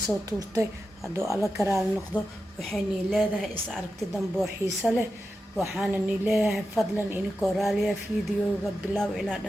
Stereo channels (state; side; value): normal; both; correlation 0.90